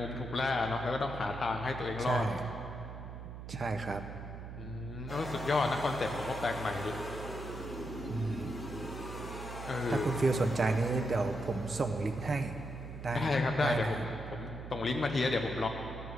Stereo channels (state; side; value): noise; right; hum, 10 dB below the sound